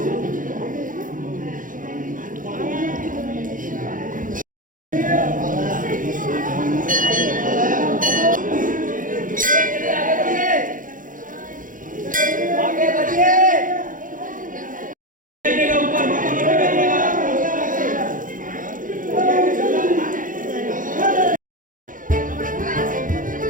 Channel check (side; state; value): left; late; 0.39 ms